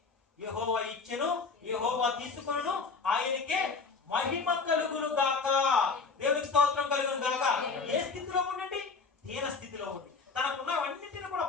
యెహోవా ఇచ్చెను, యెహోవా తీసుకొనును, ఆయనకే మహిమ కలుగును గాక. దేవునికి స్తోత్రం కలుగును గాక. ఏ స్థితిలో ఉండండి? దీన స్థితిలో ఉండి, తనకున్నవన్నింటిని కూడా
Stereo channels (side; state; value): right; quieter; 4.6 dB